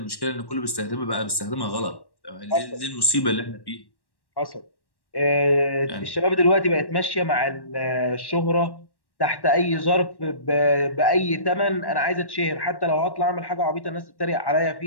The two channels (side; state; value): right; late; 1.1 ms